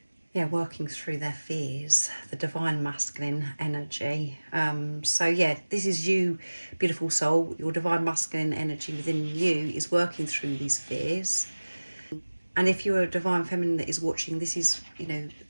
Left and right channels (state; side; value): inverted; both; correlation -1.00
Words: yeah, working through their fears, the divine masculine energy. So yeah, this is you, beautiful soul. Your divine masculine energy within you is working through these fears. And if you're a divine feminine that is watching, this is, you know,